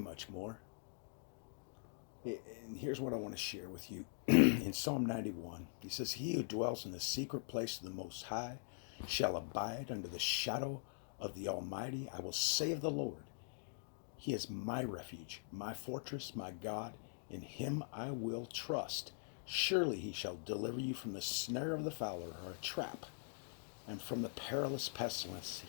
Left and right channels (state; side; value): silent; right; digital silence